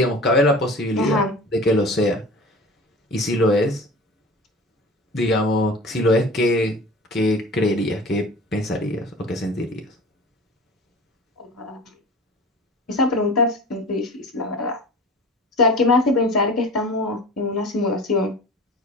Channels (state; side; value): normal; both; correlation 0.38